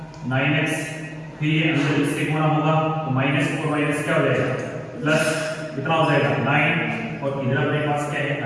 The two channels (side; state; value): both; identical; correlation 1.00